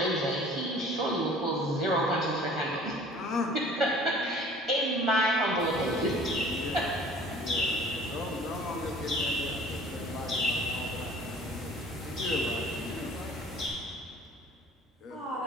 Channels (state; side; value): normal; both; correlation 0.50